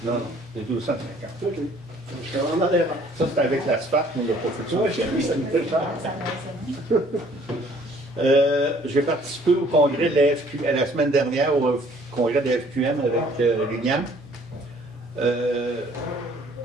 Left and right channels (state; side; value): noise; right; hum, 29 dB below the sound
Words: Non, c'est 250. OK. Je suis vraiment dans l'erreur. Ça, c'est avec l'asphalte, on l'a pas fait ça. Oui, j'ai vu, ça me fait cher. J'ai participé au congrès de la FQ, la semaine dernière, au congrès de la FQM avec Liliane.